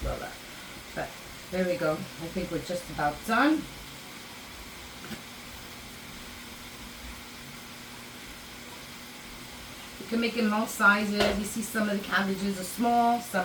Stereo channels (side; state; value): both; identical; correlation 1.00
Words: up. But there we go. I think we're just about done. You can make it most sizes. You see some of the cabbages are small,